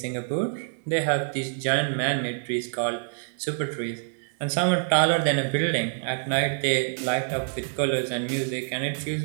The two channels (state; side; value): silent; left; 61 dB below the other